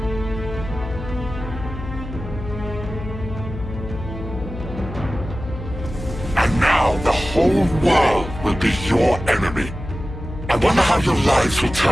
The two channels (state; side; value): noise; left; hum, 10 dB below the sound